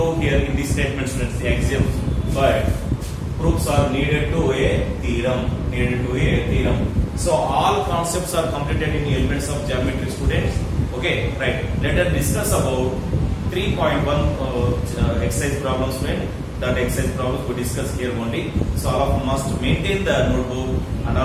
here in this statement, students, the axioms, but proofs are needed to a theorem. So all concepts are completed in elements of geometry, students. Okay, right. Let us discuss about 3.1 exercise problems, friend. That exercise problems we discuss here only. So all of you must maintain the notebook and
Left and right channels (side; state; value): both; identical; correlation 1.00